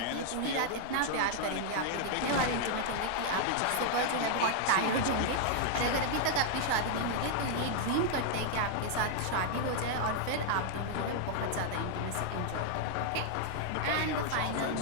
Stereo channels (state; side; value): different; both; correlation 0.00